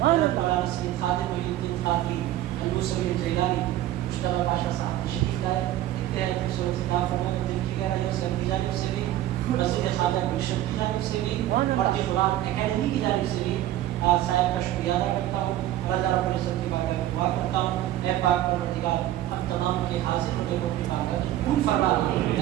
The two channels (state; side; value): quieter; left; 13.6 dB